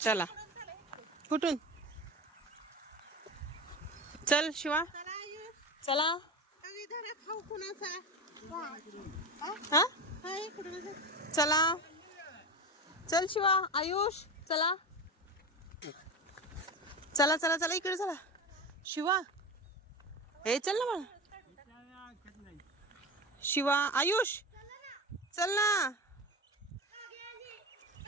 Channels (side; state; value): both; normal; correlation 0.24